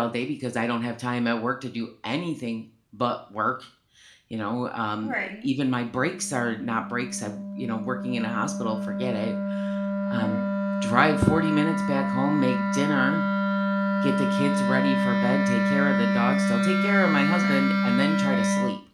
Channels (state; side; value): identical; both; correlation 1.00